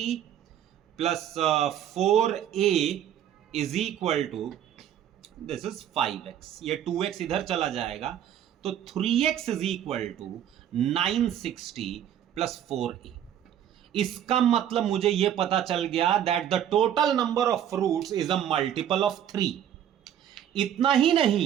plus 4a is equal to this is 5x. ये 2x इधर चला जाएगा तो 3x is equal to 960 plus 4a. इसका मतलब मुझे यह पता चल गया that the total number of fruits is a multiple of 3. इतना ही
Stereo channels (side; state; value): left; quieter; 10.2 dB